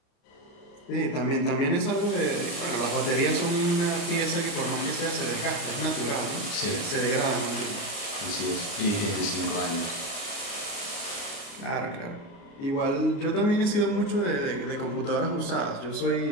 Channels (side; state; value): right; late; 29 ms